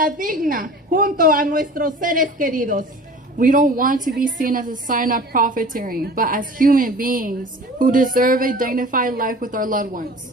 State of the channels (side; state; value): both; normal; correlation 0.42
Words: digna junto a nuestros seres queridos. We don't want to be seen as a sign of profiteering, but as human beings who deserve a dignified life with our loved